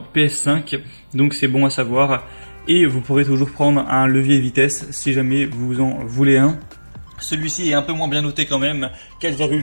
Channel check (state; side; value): inverted; both; correlation -1.00